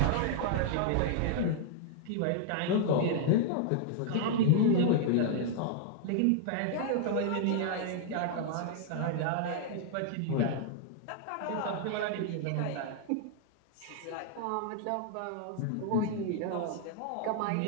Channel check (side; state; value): both; different; correlation -0.01